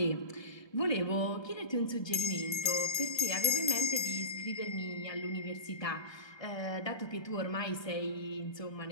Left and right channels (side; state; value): right; late; 1.2 ms